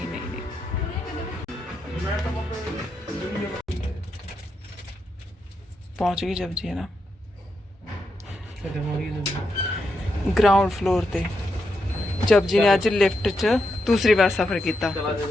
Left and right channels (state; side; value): normal; both; correlation 0.84